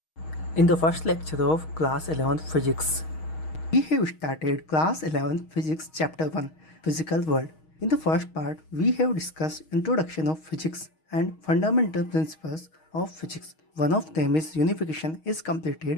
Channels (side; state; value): right; late; 6.4 ms